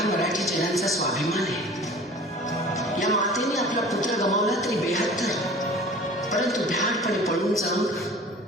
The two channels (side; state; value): both; normal; correlation 0.43